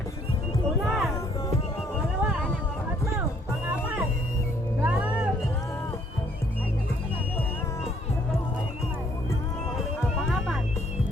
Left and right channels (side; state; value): both; normal; correlation 0.65